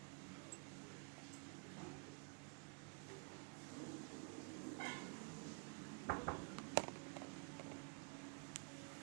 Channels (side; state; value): left; quieter; 36.6 dB